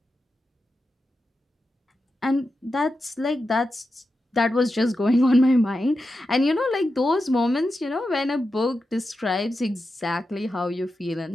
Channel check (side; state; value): both; normal; correlation 0.90